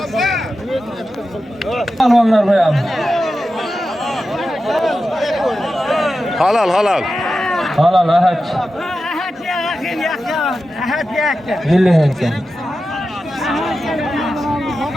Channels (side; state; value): both; normal; correlation 0.92